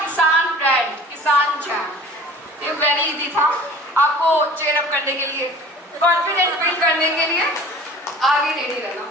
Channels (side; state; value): both; normal; correlation 0.45